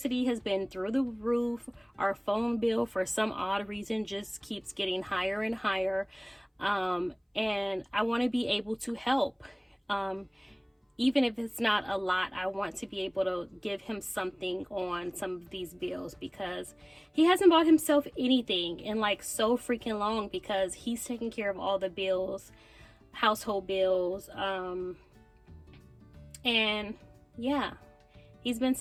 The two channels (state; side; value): identical; both; correlation 1.00